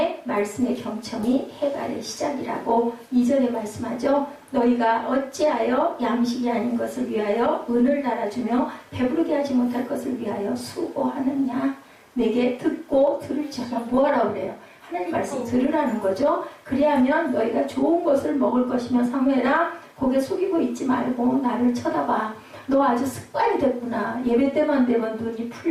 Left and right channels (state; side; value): identical; both; correlation 1.00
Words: 말씀의 경청이 해갈의 시작이라고 2절에 말씀하죠. 너희가 어찌하여 양식이 아닌 것을 위하여 은을 달아주며 배부르게 하지 못할 것을 위하여 수고하느냐. 내게 듣고 들을지어다. 뭐하라고 그래요? 하나님 말씀 들으라는 거죠. 그리하면 너희가 좋은 것을 먹을 것이며 사무엘아 고개 숙이고 있지 말고 나를 쳐다봐. 너 아주 습관이 됐구나. 예배 때만 되면 눈이